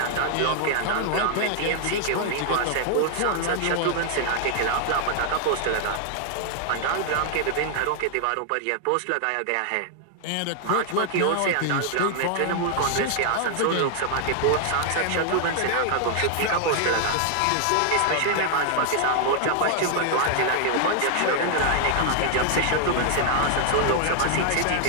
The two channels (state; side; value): different; both; correlation 0.00